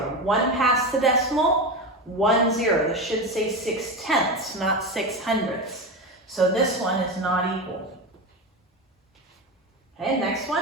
1 past the decimal, 1 0. This should say 6 tenths, not 6 hundredths. So this one is not equal. Okay, next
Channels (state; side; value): normal; both; correlation 0.20